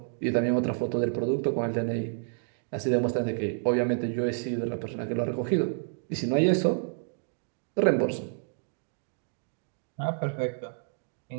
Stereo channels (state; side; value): silent; left; digital silence